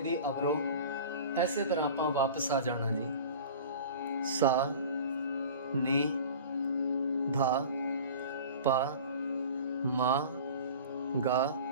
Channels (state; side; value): inverted; both; correlation -0.39